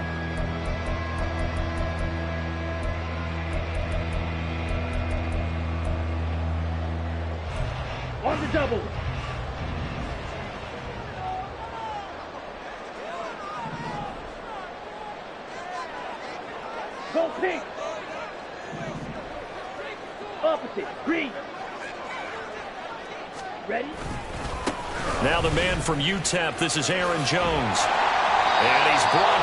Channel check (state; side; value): identical; both; correlation 1.00